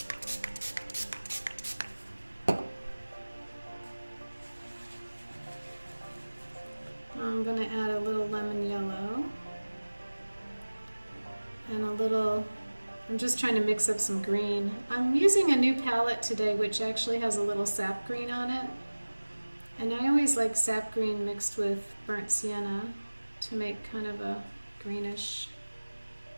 I'm going to add a little lemon yellow and a little, I'm just trying to mix up some green. I'm using a new palette today which actually has a little sap green on it, and I always like sap green mixed with burnt sienna to make kind of a greenish,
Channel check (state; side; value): inverted; both; correlation -1.00